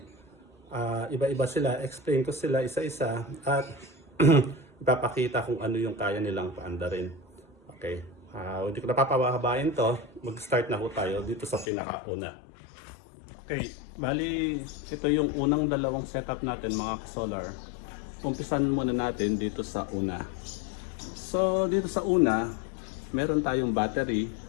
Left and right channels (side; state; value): right; drops out; at 11.7 s